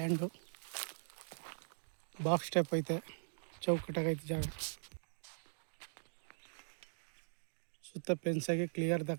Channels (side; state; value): left; silent; digital silence